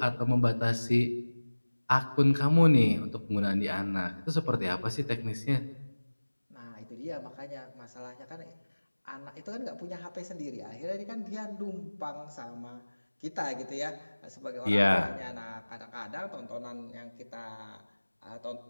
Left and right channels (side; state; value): both; inverted; correlation -1.00